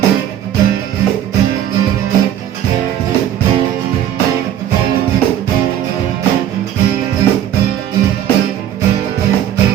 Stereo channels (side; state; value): left; quieter; 10.8 dB